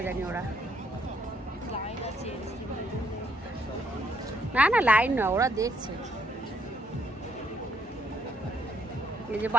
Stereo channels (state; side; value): normal; both; correlation 0.71